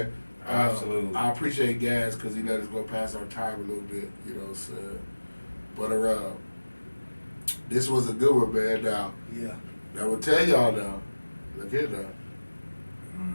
Absolutely. I appreciate Gaz because he let us go past our time a little bit, you know what I'm saying? But this was a good one, man. Now, Yeah. I will tell y'all now. Look here now.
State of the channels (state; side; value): inverted; both; correlation -1.00